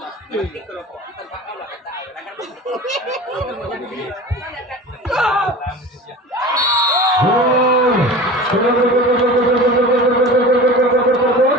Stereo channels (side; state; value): both; normal; correlation 0.35